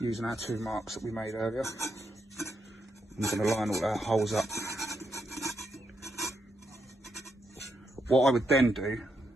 using our 2 marks that we made earlier. I'm going to line all our holes up. What I would then do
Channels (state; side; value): normal; both; correlation 0.81